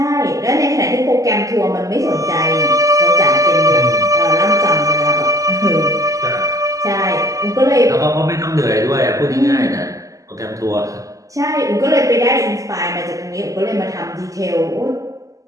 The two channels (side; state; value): left; late; 0.16 ms